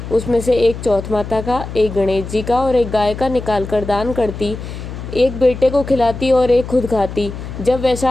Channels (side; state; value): left; noise; hum, 9 dB below the sound